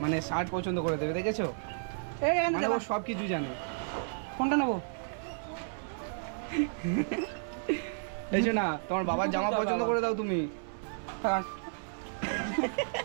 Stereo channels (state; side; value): silent; left; 56 dB below the other